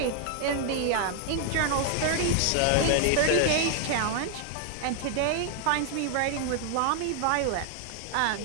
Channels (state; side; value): different; both; correlation 0.00